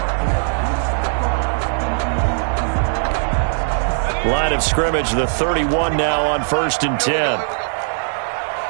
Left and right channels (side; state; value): left; silent; digital silence